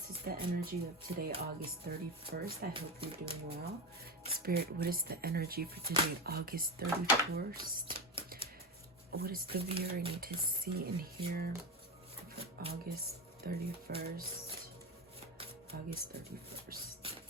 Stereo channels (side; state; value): both; normal; correlation 0.18